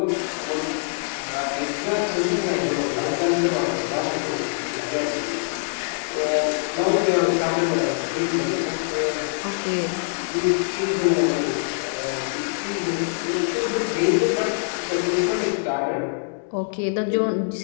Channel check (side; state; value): right; silent; digital silence